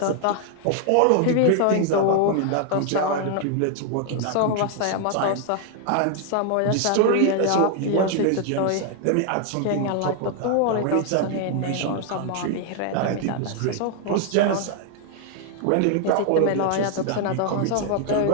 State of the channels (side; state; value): both; different; correlation 0.00